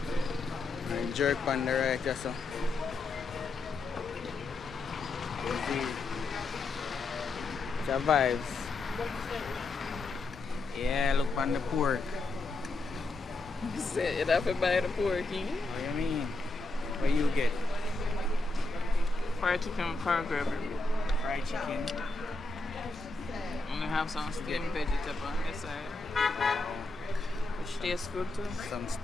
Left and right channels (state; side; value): quieter; right; 3.4 dB